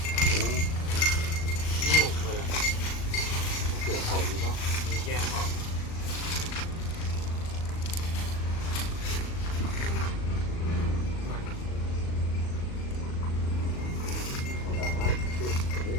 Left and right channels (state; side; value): late; right; 38 ms